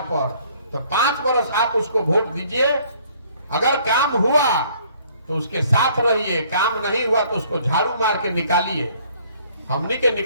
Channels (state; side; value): inverted; both; correlation -0.60